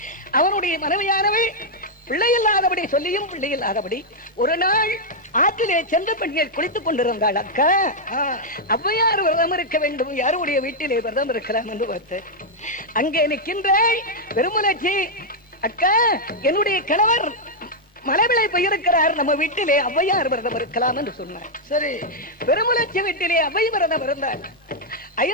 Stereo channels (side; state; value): both; normal; correlation -0.03